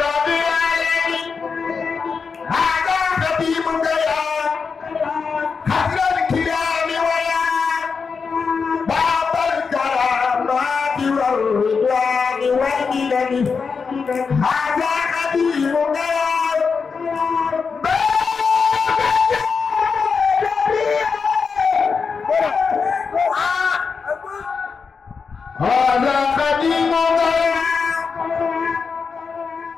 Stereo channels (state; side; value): quieter; right; 5.3 dB